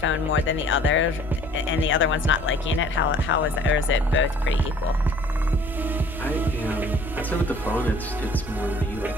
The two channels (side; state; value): both; normal; correlation 0.54